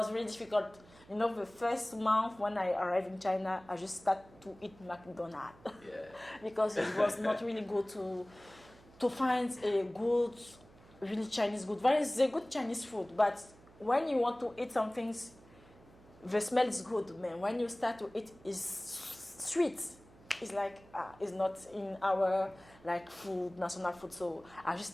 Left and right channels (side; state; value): right; noise; hum, 24 dB below the sound